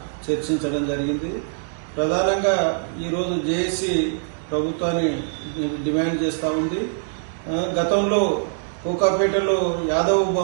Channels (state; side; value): silent; left; digital silence